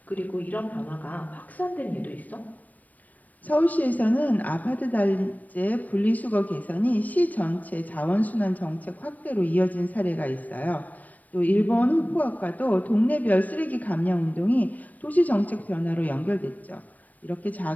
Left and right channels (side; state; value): right; late; 0.077 ms